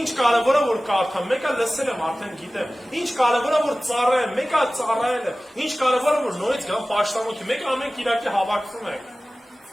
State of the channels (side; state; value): both; normal; correlation 0.97